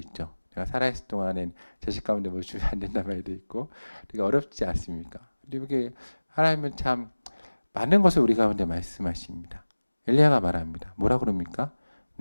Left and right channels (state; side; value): inverted; both; correlation -1.00